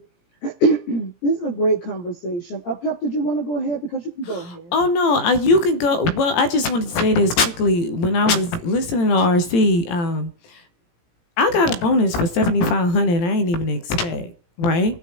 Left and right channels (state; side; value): late; right; 17 ms